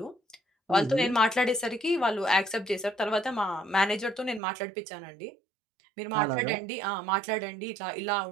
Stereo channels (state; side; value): drops out; left; at 4.4 s